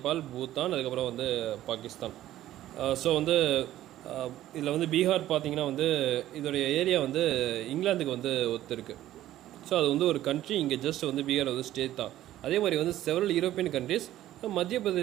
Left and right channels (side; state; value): left; quieter; 13.7 dB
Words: பூட்டான், அதுக்கப்புறம் வந்து பாகிஸ்தான். ஸோ வந்து இதில் வந்து பீகார் பார்த்திங்கன்னா வந்து இதோடைய ஏரியா வந்து இங்கிலாந்துக்கு வந்து ஒத்து இருக்குது. ஸோ அது வந்து ஒரு கண்ட்ரி, இங்கே ஜஸ்ட் வந்து பீகார் வந்து ஸ்டேட் தான். அதே மாதிரி வந்து செவரல் யூரோப்பியன் கண்ட்ரிஸ், மத்திய